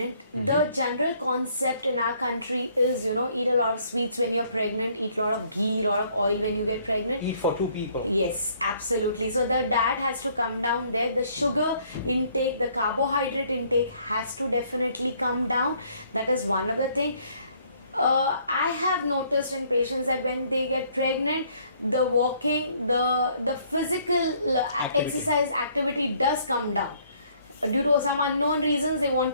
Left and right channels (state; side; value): inverted; both; correlation -0.63